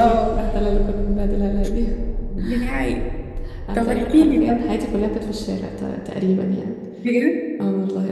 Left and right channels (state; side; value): identical; both; correlation 1.00